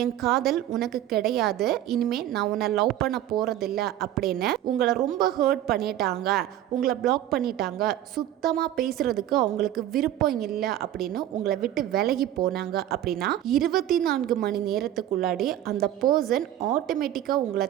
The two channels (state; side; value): quieter; left; 12.5 dB